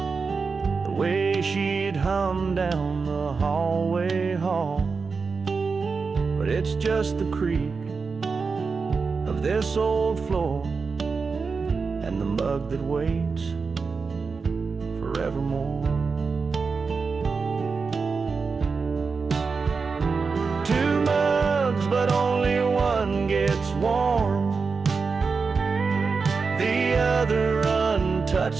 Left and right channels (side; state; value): left; quieter; 4.8 dB